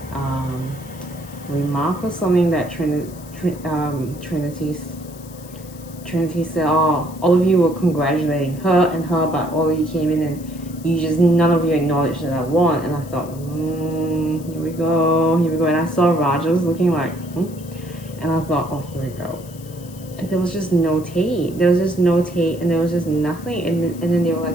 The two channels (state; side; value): noise; left; hiss, 20 dB below the sound